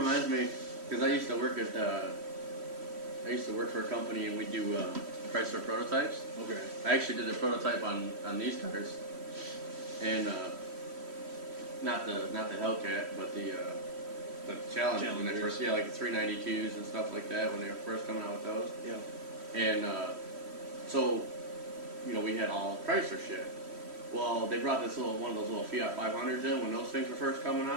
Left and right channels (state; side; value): late; left; 3.1 ms